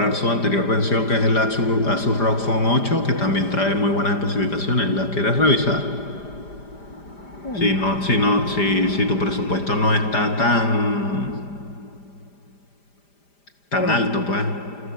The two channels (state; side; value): late; right; 5.0 ms